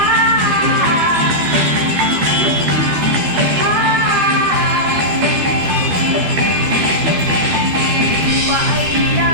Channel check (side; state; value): left; late; 12 ms